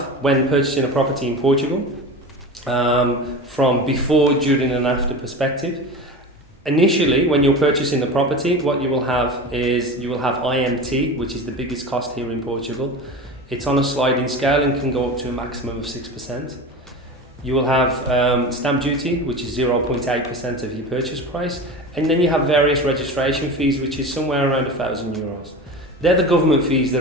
when purchasing a property in Portugal, from before, during and after perspective. Initially, when you're purchasing the property, what you will have is you will have IMT, which is the biggest cost here in Portugal. It's on a sliding scale and can go up to a maximum of 6%. You will have stamp duty, which is 0.8% of your purchase price, and then you have various registration fees, which is somewhere around €1,000. They're the government fees that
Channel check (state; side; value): normal; both; correlation 0.29